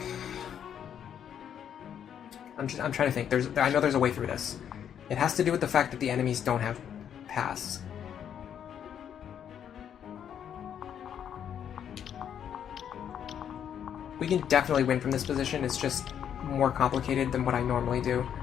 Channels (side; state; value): right; quieter; 9.0 dB